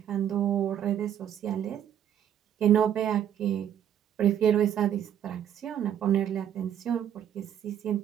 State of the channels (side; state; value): left; quieter; 9.9 dB